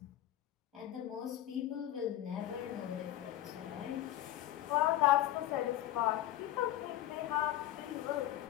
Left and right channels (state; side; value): quieter; right; 13.4 dB